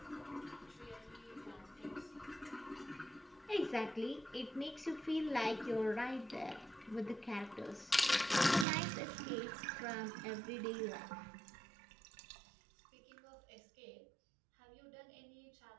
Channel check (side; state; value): left; drops out; at 8.7 s